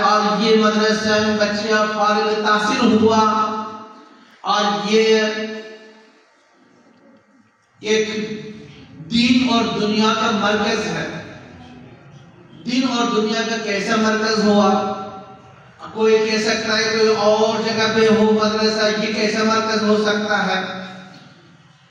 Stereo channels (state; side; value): identical; both; correlation 1.00